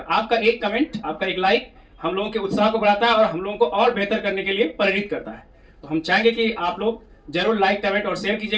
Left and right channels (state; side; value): identical; both; correlation 1.00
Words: आपका एक कमेंट, आपका एक लाइक हम लोगों के उत्साह को बढ़ाता है और हम लोगों को और बेहतर करने के लिए प्रेरित करता है। तो हम चाहेंगे कि आप लोग जरूर लाइक, कमेंट और शेयर